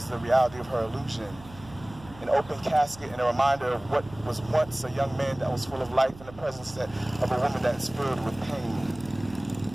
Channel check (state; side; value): noise; right; hum, 19 dB below the sound